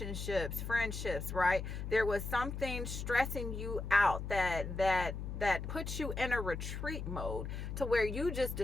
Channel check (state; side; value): noise; left; hum, 6 dB below the sound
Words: friendships, right? There was something stressing you out that puts you in a retreat mode, to where you just